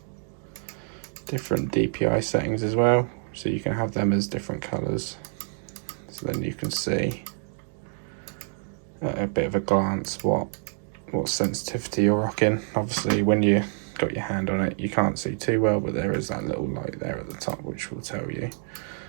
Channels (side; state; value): left; silent; 56 dB below the other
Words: different DPI settings as well, so you can have them as different colors, so then you can see at a bit of a glance what sensitivity you're rocking. Obviously when you got your hand on it you can't see too well, but there is that little light there at the top which will tell you